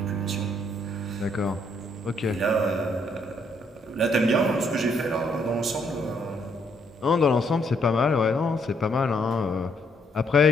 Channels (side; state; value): both; normal; correlation 0.71